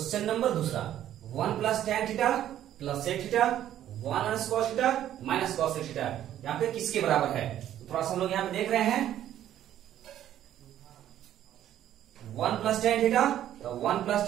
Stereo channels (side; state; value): left; quieter; 11.7 dB